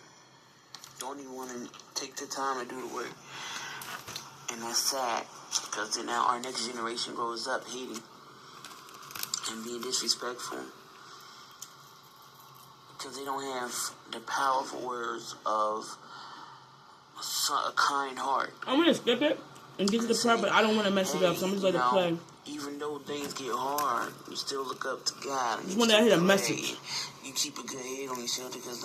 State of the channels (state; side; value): identical; both; correlation 1.00